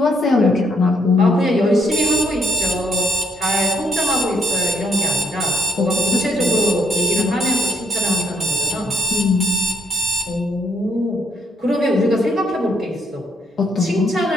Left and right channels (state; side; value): normal; both; correlation 0.73